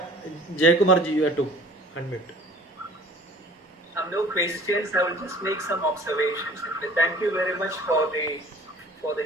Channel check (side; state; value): both; normal; correlation 0.48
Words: Jayakumarji, you have to unmute. No questions. I will just make some observations. Thank you very much for